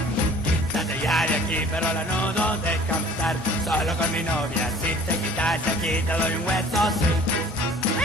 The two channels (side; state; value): both; normal; correlation 0.50